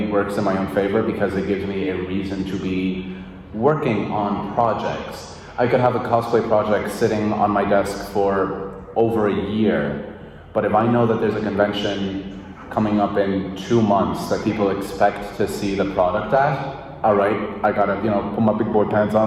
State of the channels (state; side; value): identical; both; correlation 1.00